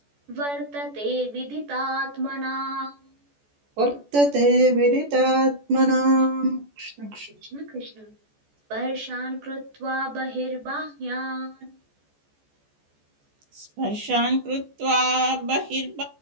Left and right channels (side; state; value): left; late; 14 ms